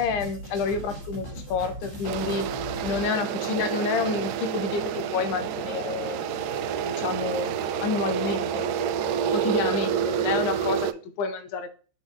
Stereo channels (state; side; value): late; right; 14 ms